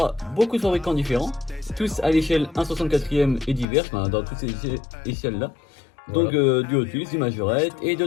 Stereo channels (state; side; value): drops out; right; at 3.7 s